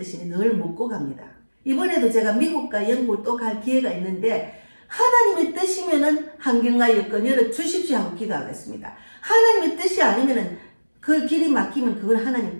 늘 묻고 갑니다. 이번에도 제가 미국과 영국을 또 갈 기회가 있는데 하나님의 뜻이면은 환경과 여건 열어 주십시오 하고 기도하겠습니다. 하나님의 뜻이 아니면은 그 길이 막히면 그건 하나님의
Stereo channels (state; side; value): inverted; both; correlation -1.00